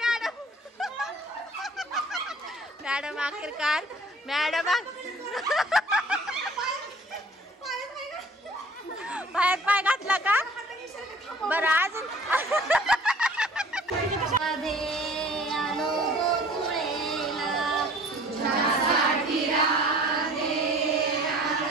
मॅडम आखिरकार मॅडम पायात पाय घातला का? बरं अजून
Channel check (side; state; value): both; normal; correlation 0.50